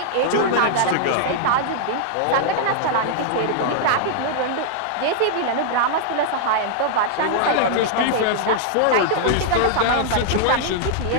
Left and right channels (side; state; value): both; different; correlation -0.01